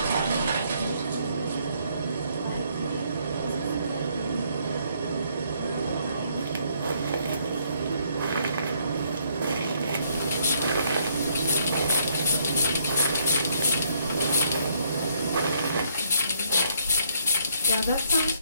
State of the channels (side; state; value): both; inverted; correlation -0.68